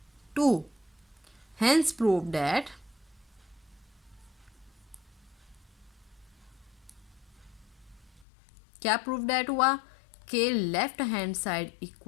2 hence prove that क्या प्रूव डेट हुआ कि लेफ्ट हैंड साइड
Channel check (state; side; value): drops out; right; at 8.2 s